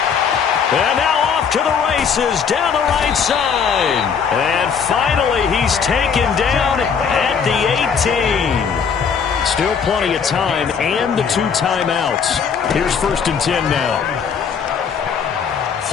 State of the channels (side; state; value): right; quieter; 6.6 dB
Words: And now off to the races down the right side. And finally he's taken down at the 18. Still plenty of time and the 2 timeouts. Here's 1st and 10 now.